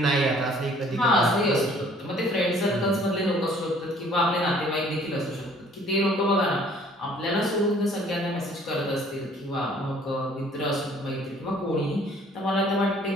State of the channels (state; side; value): normal; both; correlation 0.57